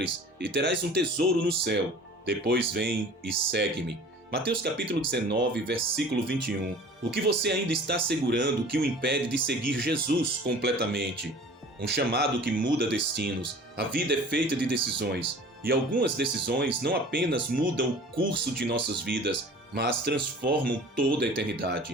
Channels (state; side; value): normal; both; correlation 0.44